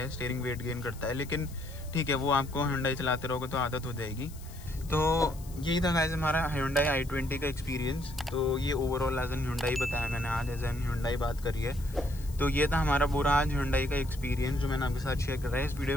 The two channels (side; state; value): left; noise; hiss, 20 dB below the sound